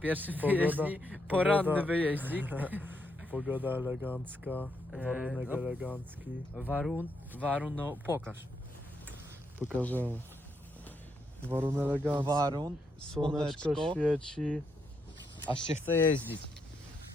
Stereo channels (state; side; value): normal; both; correlation 0.79